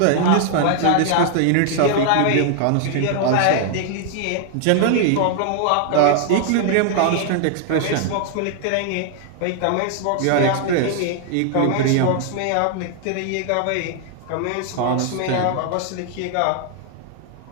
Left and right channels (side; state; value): both; different; correlation 0.00